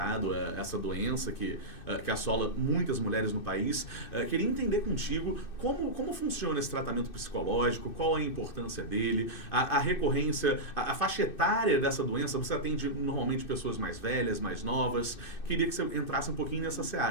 essa doença que assola muitas mulheres no país. Queria entender contigo como funciona esse tratamento psicológico, qual a importância dele, a recorrência, a faixa etária dessa doença. Você atende normalmente pessoas mais velhas, mais novas. Queria que você entrasse um pouquinho nessa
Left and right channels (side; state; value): right; late; 2.6 ms